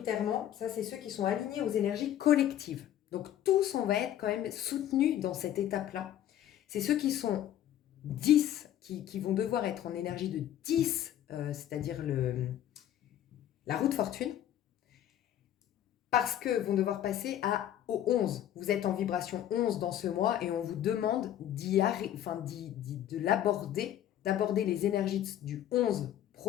ça c'est ceux qui sont alignés aux énergies collectives. Donc tous, on va être quand même soutenus dans cette étape-là. C'est ceux qui sont 10, qui vont devoir être en énergie de 10, c'est-à-dire la roue de fortune, parce que vont devoir passer au 11. Vous êtes en vibration 11 dans ce mois et on vous demande de l'aborder, d'aborder les énergies du 11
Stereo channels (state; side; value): quieter; right; 11.4 dB